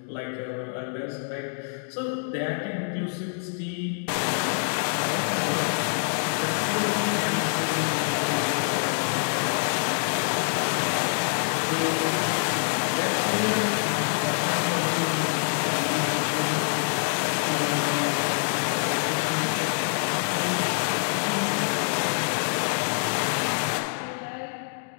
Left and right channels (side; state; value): right; silent; digital silence